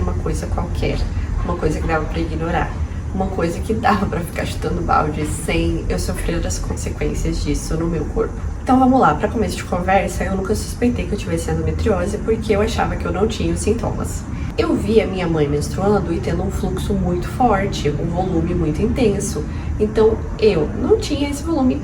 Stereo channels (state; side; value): identical; both; correlation 1.00